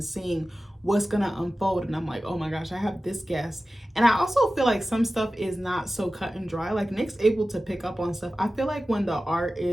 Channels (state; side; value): normal; both; correlation 0.95